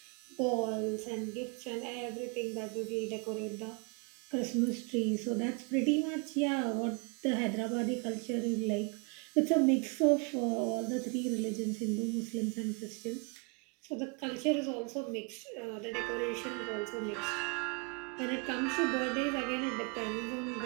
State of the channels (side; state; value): left; quieter; 32.9 dB